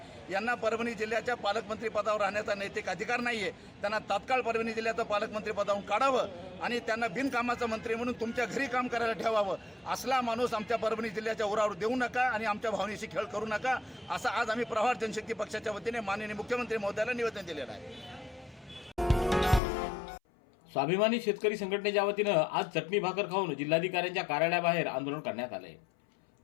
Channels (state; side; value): drops out; right; at 19.6 s